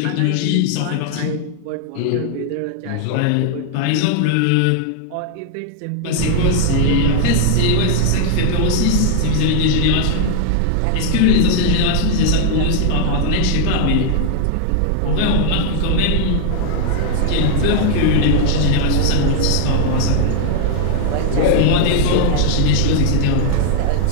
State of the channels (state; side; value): different; both; correlation 0.00